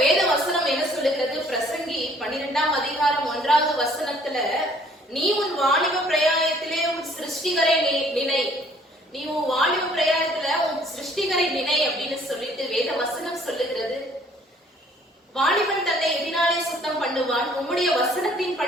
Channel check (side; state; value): both; normal; correlation 0.59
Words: வேத வசனம் என்ன சொல்லுகிறது? பிரசங்கி 12ஆம் அதிகாரம் 1வது வசனத்துல, நீ உன் வாலிப பிரயாணத்திலே உன் சிருஷ்டிகரை நினை, நீ உன் வாலிப பிரயாணத்துல உன் சிருஷ்டிகரை நினை அப்படின்னு சொல்லிட்டு வேத வசனம் சொல்லுகிறது. வாலிபன் தன்னை எதினாலே சுத்தம் பண்ணுவான், உம்முடைய வசனத்தின்